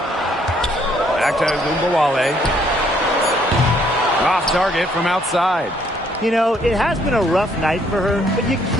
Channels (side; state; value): both; normal; correlation 0.67